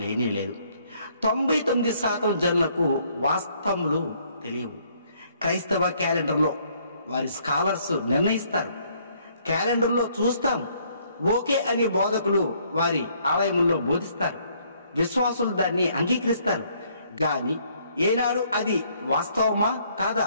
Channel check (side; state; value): both; inverted; correlation -0.66